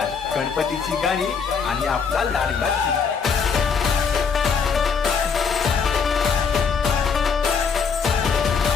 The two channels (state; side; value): quieter; right; 6.0 dB